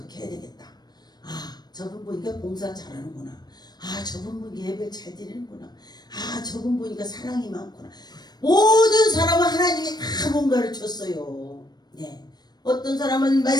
해야 되겠다. 저분 보니까 봉사 잘하는구나. 저분 보니까 예배 잘 드리는구나. 저분 보니까 사랑이 많구나. 모든 사람은 하나님이 다 뭔가를 줬어요. 어떤 사람은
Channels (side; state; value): right; late; 0.20 ms